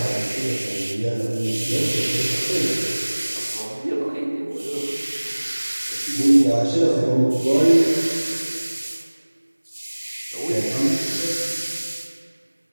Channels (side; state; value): both; inverted; correlation -1.00